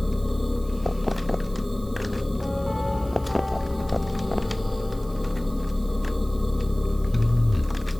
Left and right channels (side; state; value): right; noise; hiss, 23 dB below the sound